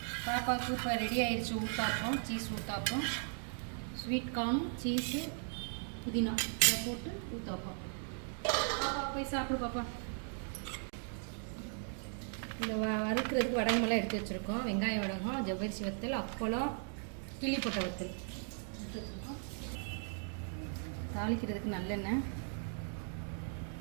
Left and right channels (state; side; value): silent; left; 53 dB below the other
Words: பாப்பாவுக்கு இப்போ ரெடி ஆயிடுச்சு ஊத்தாப்பம், சீஸ் ஊத்தாப்பம், ஸ்வீட் கார்னும் சீஸு புதினா இதை போட்டு ஊத்தாப்பம். பாப்பா போய் சாப்பிடு பாப்பா. இந்த வறுக்கிறதுக்கு வடகமெல்லாம் எடுத்து வச்சுருக்கோம். வெங்காயம் வடகம், ஜவ்வரிசி வத்தல், அப்பளம், கிள்ளி போட்ட வத்தல் எடுத்து வச்சுருக்கோம். தாளிக்கிறதுக்கு நல்லெண்ணெய்,